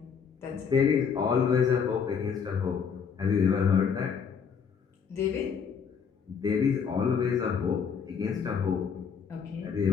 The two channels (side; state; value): right; quieter; 6.5 dB